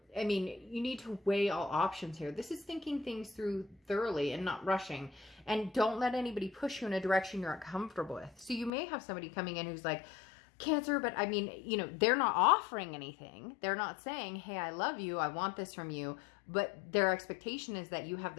mean, you need to weigh all options here. This is thinking things through thoroughly and not rushing. And don't let anybody push you in a direction you're uncomfortable with. So you may have somebody coming in who's like, Cancer, but I mean, you know, they're not offering anything. They're not saying, hey, I love you, I want this from you. But their expectation is that you have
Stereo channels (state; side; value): drops out; right; at 8.7 s